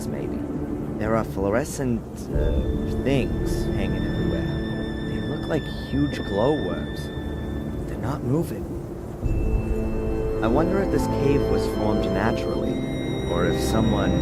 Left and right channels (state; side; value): identical; both; correlation 1.00